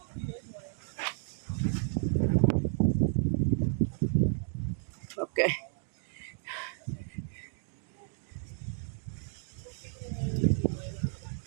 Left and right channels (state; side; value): silent; left; digital silence